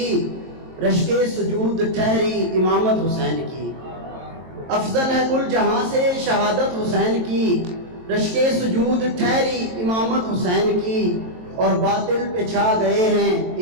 رشک سجود ٹھہری امامت حسین کی، افضل ہے کل جہاں سے شہادت حسین کی، رشک سجود ٹھہری امامت حسین کی، اور باطل پہ چھا گئے ہیں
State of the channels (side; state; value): left; late; 23 ms